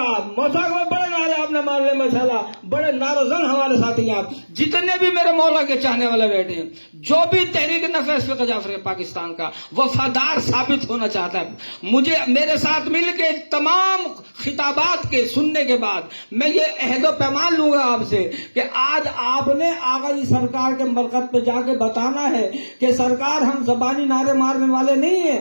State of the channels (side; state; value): both; inverted; correlation -1.00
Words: موسیقی میں بڑے نعرے آپ نے مار لے ماشاءاللہ، بڑے نعرہ زن ہمارے ساتھی ہیں آپ، جتنے بھی میرے مولا کے چاہنے والے بیٹھے ہیں، جو بھی تحریک نفاذ فقہ جعفری پاکستان کا وفادار ثابت ہونا چاہتا ہے، مجھے میرے ساتھ مل کے تمام خطابات کے سننے کے بعد میں یہ عہد و پیمان لوں گا آپ سے کہ آج آپ نے آغا جی سرکار کے مرکز پہ جا کے بتانا ہے کہ سرکار ہم زبانی نعرے مارنے والے نہیں ہیں،